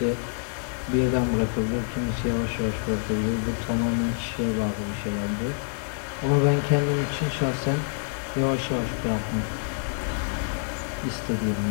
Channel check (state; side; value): silent; right; 60 dB below the other